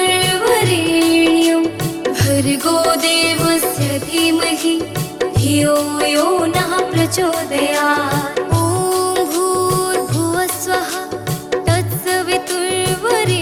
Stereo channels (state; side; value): identical; both; correlation 1.00